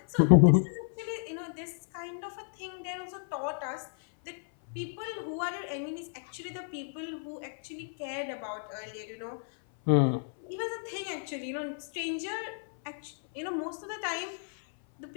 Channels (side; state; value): right; silent; 56 dB below the other